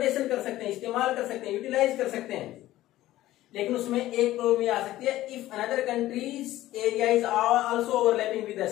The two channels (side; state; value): right; quieter; 15.2 dB